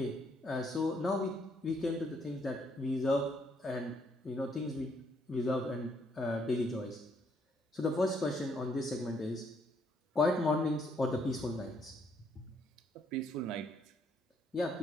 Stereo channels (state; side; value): normal; both; correlation 0.70